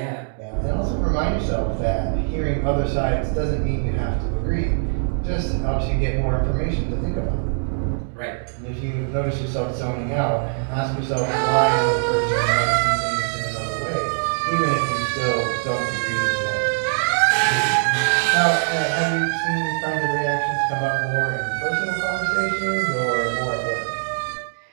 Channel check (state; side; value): silent; left; digital silence